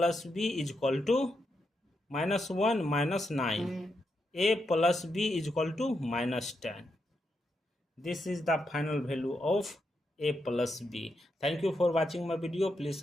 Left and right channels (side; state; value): both; normal; correlation 0.83